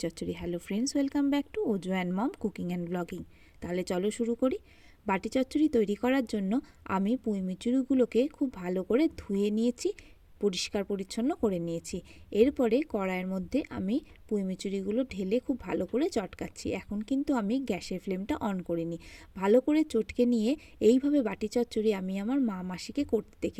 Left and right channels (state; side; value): identical; both; correlation 1.00